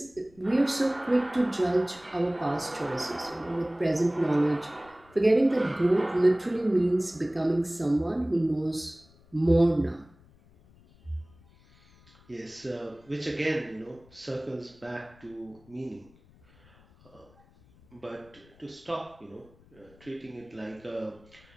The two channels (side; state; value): left; noise; rumble, 28 dB below the sound